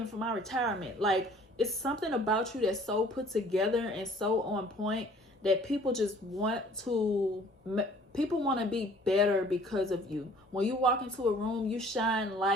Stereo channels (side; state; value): both; normal; correlation 0.54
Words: for my retirement. Like, it's something about you that's so put together and so on point that people just want to be better because of you. When you walk into a room, you shine